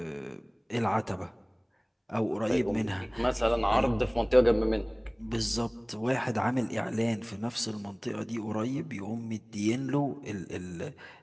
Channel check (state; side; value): identical; both; correlation 1.00